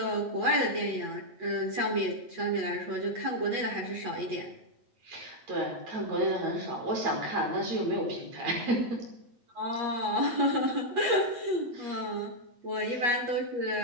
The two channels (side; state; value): left; late; 8.4 ms